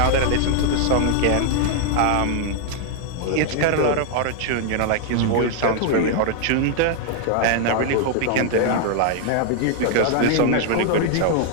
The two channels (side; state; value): both; different; correlation 0.00